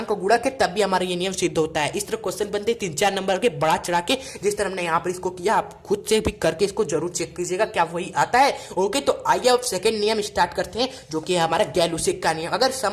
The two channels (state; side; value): identical; both; correlation 1.00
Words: गुणक है, तब भी हमारा ये नियम सिद्ध होता है। इस तरह क्वेश्चन बनते 3-4 नंबर के बढ़ा चढ़ा के, जिस तरह हमने यहाँ पर इसको किया, आप खुद से भी करके इसको जरूर चेक कीजिएगा क्या वही आता है। ओके, तो आइए अब सेकंड नियम स्टार्ट करते हैं, जो कि है हमारा गैलुसेक का नियम। अगर